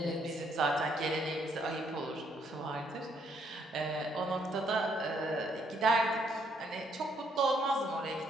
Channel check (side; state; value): both; normal; correlation 0.71